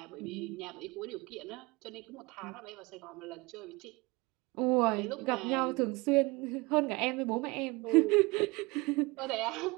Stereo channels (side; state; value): left; quieter; 24.7 dB